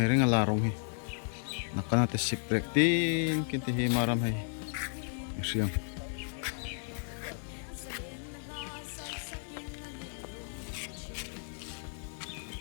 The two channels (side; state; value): right; silent; 55 dB below the other